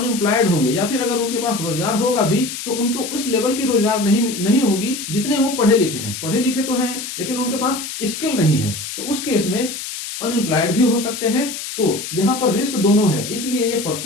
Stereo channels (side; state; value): left; noise; hiss, 7 dB below the sound